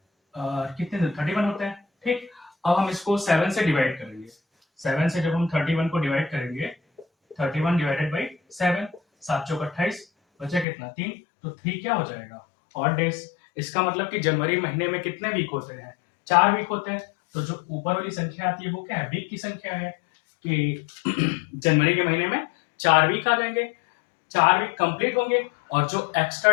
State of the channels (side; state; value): right; drops out; at 10.7 s